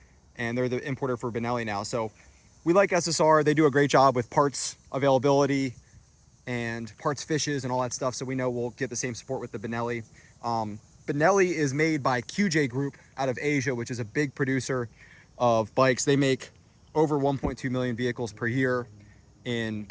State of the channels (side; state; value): both; identical; correlation 1.00